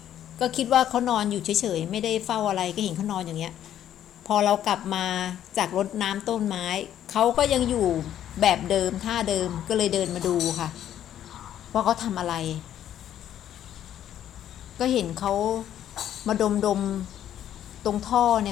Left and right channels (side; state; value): right; quieter; 10.9 dB